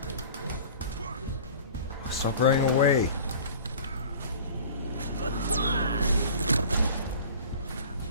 Stop running away.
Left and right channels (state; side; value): inverted; both; correlation -0.43